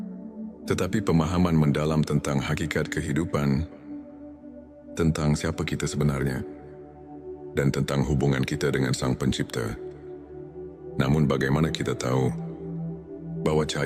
tetapi pemahaman mendalam tentang hakikat kehidupan, tentang siapa kita sebenarnya, dan tentang hubungan kita dengan Sang Pencipta. Namun bagaimana kita tahu bahwa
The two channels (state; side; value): identical; both; correlation 1.00